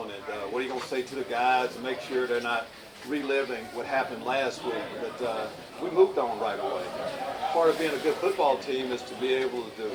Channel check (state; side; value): identical; both; correlation 1.00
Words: And what are you going to say to the guys to make sure they're not reliving what happened last week? But we moved on right away. Part of being a good football team is to be able to